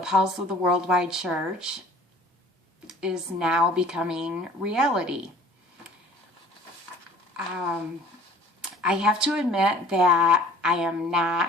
of the Worldwide Church, is now becoming reality. I have to admit that I am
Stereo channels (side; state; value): both; normal; correlation 0.49